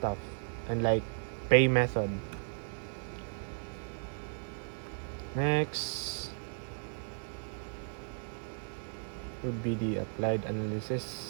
and like pay method. Next would be the applied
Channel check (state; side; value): silent; left; digital silence